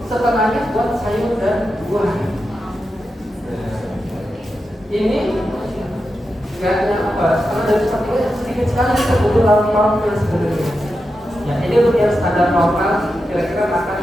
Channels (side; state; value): both; normal; correlation 0.89